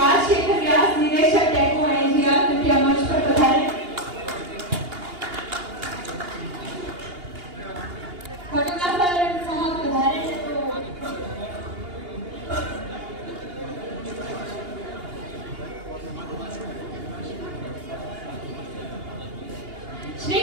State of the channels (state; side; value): late; left; 2.8 ms